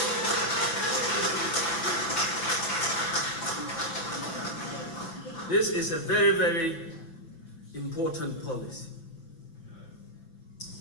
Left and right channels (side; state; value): right; late; 6.1 ms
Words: This is a very, very important policy.